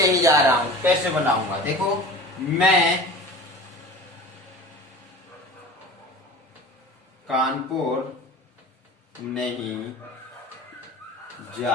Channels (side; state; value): both; normal; correlation 0.37